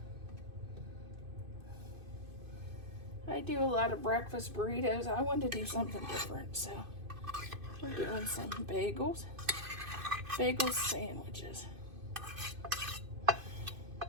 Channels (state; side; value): late; left; 2.5 ms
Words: I do a lot of breakfast burritos. I wanted to do something different, so we're doing some bagel sandwiches.